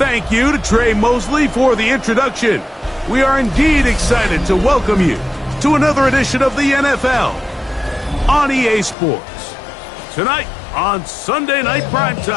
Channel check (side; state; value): right; drops out; at 9.0 s